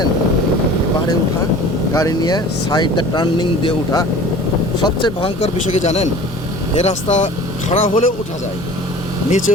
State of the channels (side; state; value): both; normal; correlation 0.43